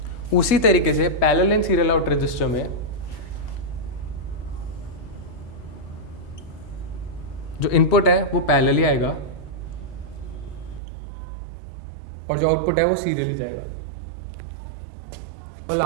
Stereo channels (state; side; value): drops out; left; at 10.8 s